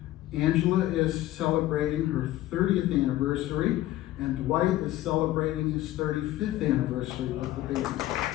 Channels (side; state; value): right; quieter; 15.1 dB